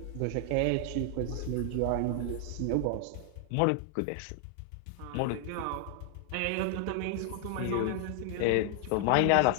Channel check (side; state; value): both; different; correlation 0.00